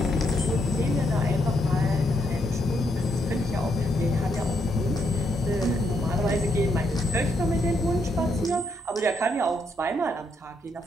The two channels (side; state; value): both; normal; correlation 0.77